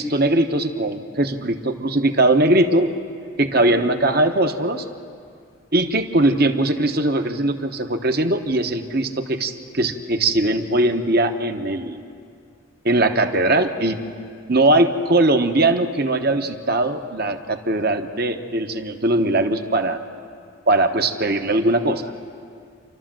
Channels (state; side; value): normal; both; correlation 0.18